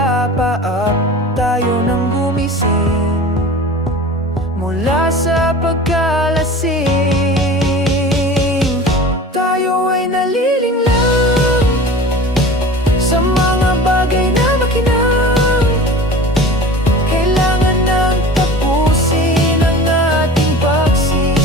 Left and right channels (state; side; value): normal; both; correlation 0.38